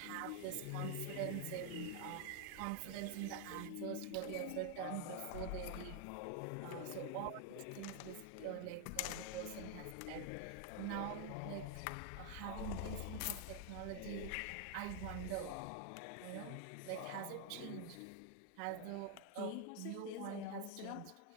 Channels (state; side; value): different; both; correlation 0.00